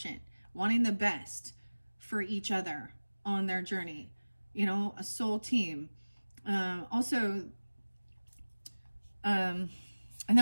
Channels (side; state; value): both; inverted; correlation -1.00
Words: wanting the best for each other on their journey. You know, a soul team. And